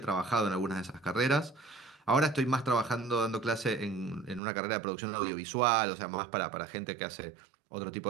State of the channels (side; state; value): left; drops out; at 4.4 s